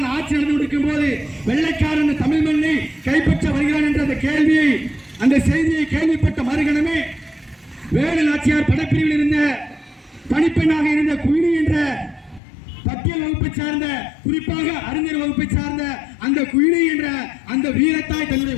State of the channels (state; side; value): drops out; right; at 12.4 s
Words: ஆட்சி நடந்து கொண்டிருக்கும் போது வெள்ளைக்காரன் தமிழ் மண்ணை கைப்பற்ற வருகிறான் என்ற அந்த கேள்வியை, அந்த செய்தியை கேள்விப்பட்ட மறுகணமே வேலு நாச்சியார் படப்பிரிவில் இருந்த பணிப்பெண்ணாக இருந்த குயினி என்ற பட்டியல் வகுப்பை சார்ந்த, குறிப்பாக அறிஞர் வகுப்பை சார்ந்த அந்த குயினி என்ற அந்த வீரத்தாய் தன்னுடைய